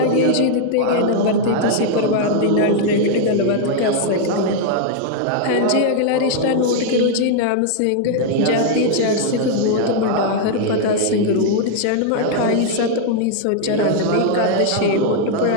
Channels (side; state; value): both; different; correlation 0.00